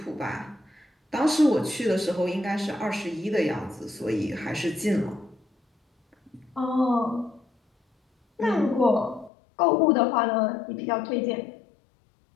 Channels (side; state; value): right; drops out; at 9.3 s